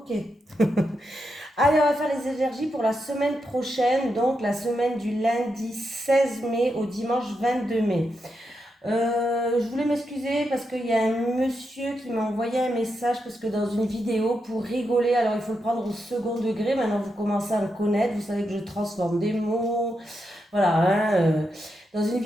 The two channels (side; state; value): both; normal; correlation 0.84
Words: Allez, on va faire les énergies pour la semaine prochaine, donc la semaine du lundi 16 mai au dimanche 22 mai. Je voulais m'excuser parce qu'il y a un monsieur qui m'a envoyé un message parce que dans une vidéo, pour rigoler, alors il faut le prendre au second degré, maintenant vous commencez à me connaître, vous savez que je transforme des mots, voilà, hein, dans une